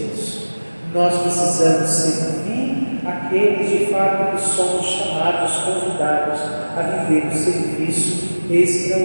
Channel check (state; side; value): inverted; both; correlation -1.00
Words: Nós precisamos servir aqueles de fato que somos chamados, convidados a viver o serviço